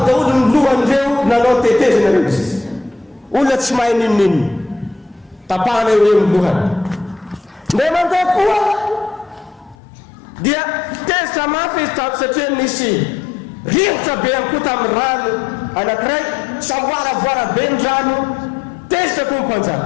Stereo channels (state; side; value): drops out; right; at 9.8 s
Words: daholo ny lohan'ireo nanao tetezana reo izy. Olona tsy mahay ninonino tapahana eo eo ny lohany. Ndray mandeha koa dia tezitra mafy izy tato satria nisy rivotra be ihany koa tamin'ny rano anankiray samboaravoara be ny rano tezitra koa ny